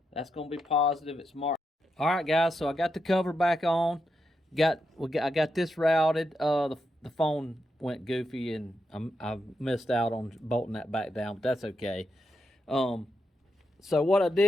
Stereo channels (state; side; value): normal; both; correlation 0.84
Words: That's gonna be positive, it's marked. Alright guys, so I got the cover back on. I got this routed. The phone went goofy, and I missed out on bolting that back down, but that's okay. So what I